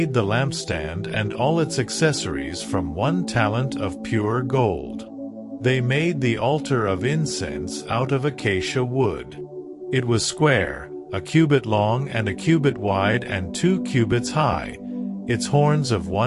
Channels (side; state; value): both; identical; correlation 1.00